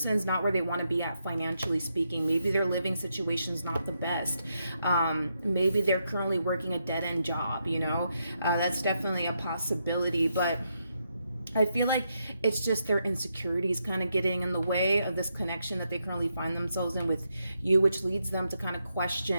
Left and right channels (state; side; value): inverted; both; correlation -0.81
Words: not where they want to be at financially speaking. Maybe their living situation's not the best. Maybe they're currently working a dead-end job, you know? That's definitely a possibility, but I feel like it's just their insecurities kind of getting in the way of this connection that they currently find themselves in with you, which leads them to kind of